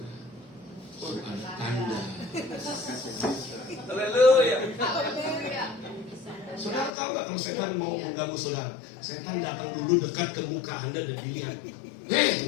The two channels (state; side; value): drops out; right; at 6.9 s